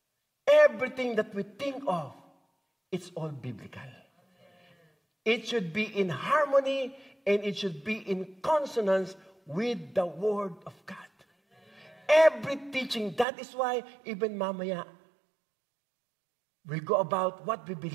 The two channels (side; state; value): left; drops out; at 13.2 s